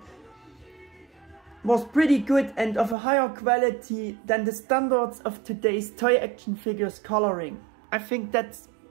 was pretty good and of a higher quality than the standards of today's toy action figures coloring. I think that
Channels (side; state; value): left; drops out; at 3.0 s